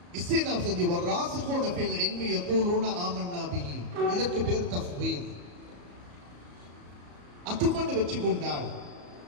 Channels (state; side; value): late; left; 34 ms